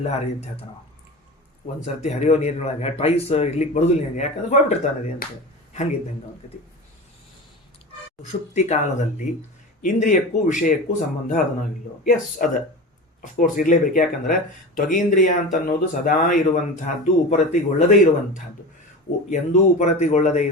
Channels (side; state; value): both; normal; correlation 0.30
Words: ಹರಿಯುತ್ತೆ ಹೇಳ್ತಾನ. ಒಂದು ಸರ್ತಿ ಹರಿಯೋ ನೀರಿನೊಳಗೆ ಟ್ವೈಸ್ ಇರ್ಲಿಕ್ಕೆ ಬರೋದಿಲ್ಲ ನಿನಗೆ, ಯಾಕಂದ್ರೆ ಹೋಗ್ಬಿಟ್ಟಿರ್ತಾನೆ ನದಿ ಅಂತ. ಹಂಗಿದ್ದಂಗೆ ಅವನ ಕತಿ. ಸುಷುಪ್ತಿ ಕಾಲದಲ್ಲಿ ಇಂದ್ರಿಯಕ್ಕೂ ವಿಷಯಕ್ಕೂ ಸಂಬಂಧ ಅದನ್ನೋ ಇಲ್ಲೋ? ಎಸ್, ಅದ ಅಫ್ಕೋರ್ಸ್ ಇರಲೇಬೇಕು. ಯಾಕಂದ್ರೆ ತ್ವಗೀಂದ್ರಿಯ ಅಂತ ಅನ್ನೋದು ಸದಾ ಇರುವಂತಹದ್ದು, ಉಪರತಿಗೊಳ್ಳದೇ ಇರುವಂತಹದ್ದು. ಎಂದೂ ಉಪರತಿಗೊಳ್ಳದೇ